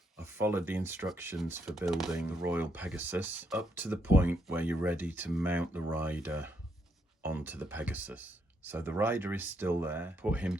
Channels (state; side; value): normal; both; correlation 0.76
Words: I've followed the instructions for building the Royal Pegasus up to the point where you're ready to mount the rider onto the Pegasus. So the rider is still there, put him